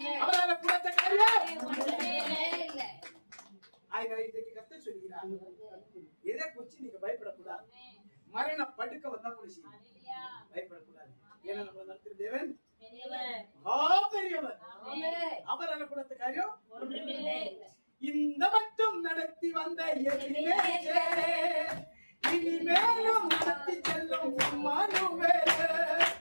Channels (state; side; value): inverted; both; correlation -1.00